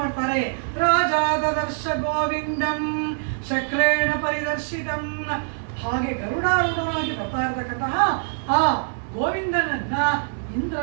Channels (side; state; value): left; silent; digital silence